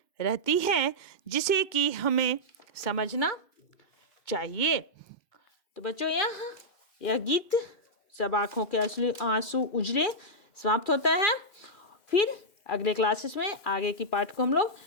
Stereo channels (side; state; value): right; late; 2.4 ms